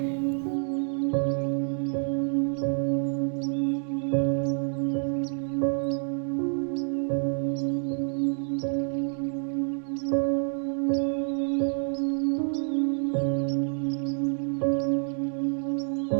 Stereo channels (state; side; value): silent; left; 59 dB below the other